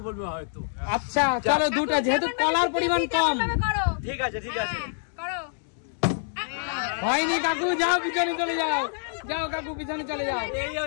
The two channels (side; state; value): right; silent; digital silence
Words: বলবে হয়তো। আচ্ছা চলো 2টা, যেহেতু কলার পরিমাণ কম। ঠিক আছে ঠিক আছে, হয়নি কাকু, যাও পিছনে চলে যাও। যাও কাকু, পিছনে চলে যাও। এই